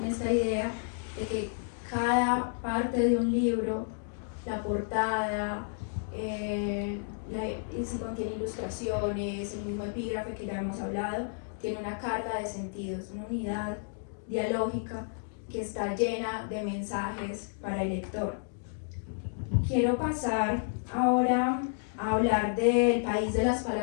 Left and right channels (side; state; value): right; silent; digital silence